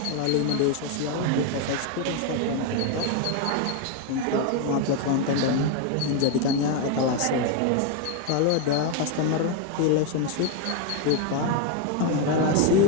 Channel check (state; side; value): different; both; correlation 0.01